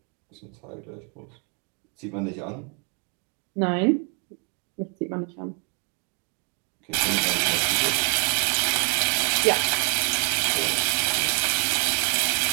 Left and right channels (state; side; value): quieter; left; 35.9 dB